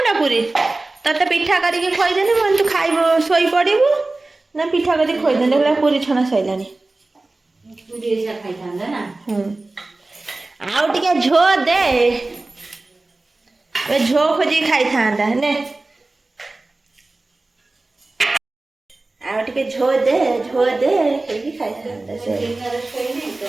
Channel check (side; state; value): left; quieter; 3.1 dB